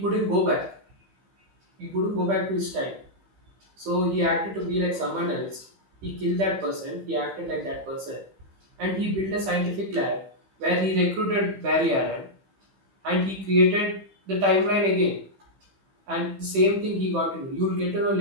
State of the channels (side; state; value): left; late; 15 ms